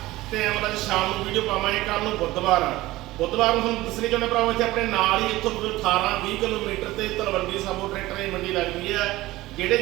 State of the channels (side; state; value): left; quieter; 17.9 dB